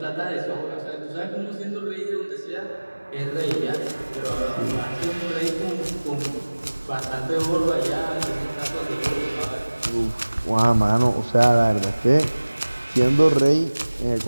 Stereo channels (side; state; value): both; inverted; correlation -1.00